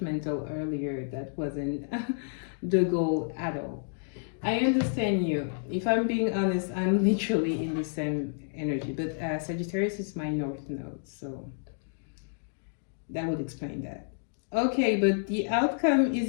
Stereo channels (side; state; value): right; silent; digital silence